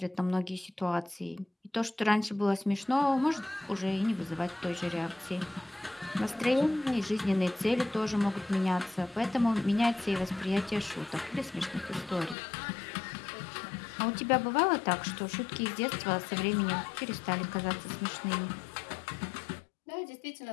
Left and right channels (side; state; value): right; drops out; at 12.4 s